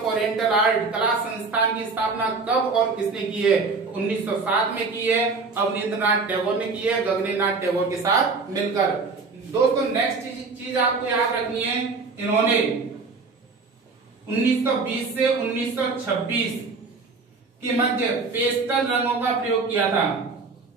oriental art कला संस्थान की स्थापना कब और किसने की है? 1907 में की है, अवनींद्रनाथ टैगोर ने की है, गगनेंद्रनाथ टैगोर के साथ मिलकर। दोस्तों नेक्स्ट चीज आपको याद रखनी है, इन्होंने 1920 से 1926 के मध्य पेस्टल रंगों का प्रयोग किया था।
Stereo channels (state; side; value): quieter; left; 4.3 dB